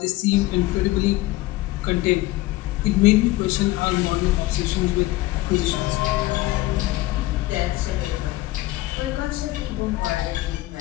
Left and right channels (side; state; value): right; quieter; 18.2 dB